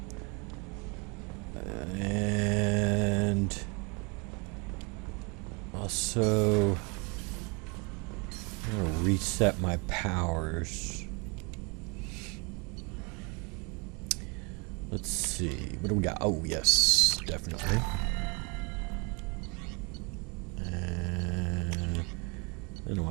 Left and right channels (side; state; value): left; quieter; 31.3 dB